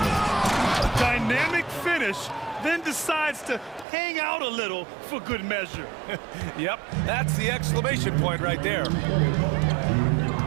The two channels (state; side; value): drops out; left; at 3.9 s